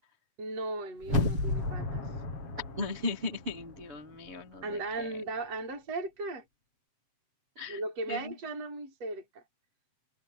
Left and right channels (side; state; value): left; late; 7.4 ms